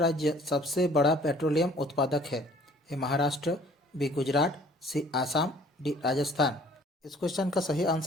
सबसे बड़ा पेट्रोलियम उत्पादक है? ए महाराष्ट्र, बी गुजरात, सी आसाम, डी राजस्थान। इस क्वेश्चन का सही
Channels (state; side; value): normal; both; correlation 0.55